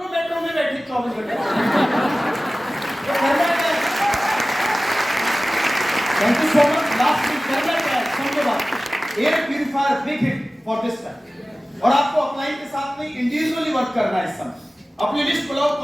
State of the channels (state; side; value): normal; both; correlation 0.96